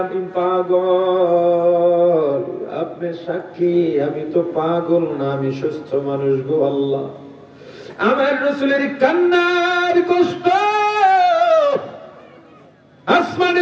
আমি পাগল, আপনি সাক্ষী, আমি তো পাগল না, আমি সুস্থ মানুষ গো আল্লাহ। আমার রাসূলের কান্নার কষ্ট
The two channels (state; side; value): identical; both; correlation 1.00